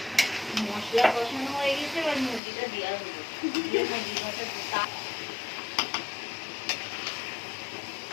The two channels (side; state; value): right; drops out; at 2.4 s